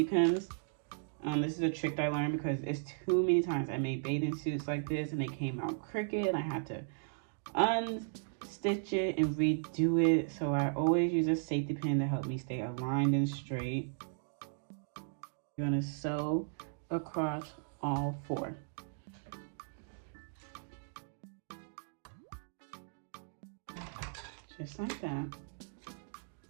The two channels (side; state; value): left; silent; digital silence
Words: pins. This is a trick that I learned because it's too many times I made bathing suits like this and they came out crooked and I had to unstitch it and redo it. So I always use a safety pin to help me stay aligned and straight. You're gonna sew across all 4. Just like that.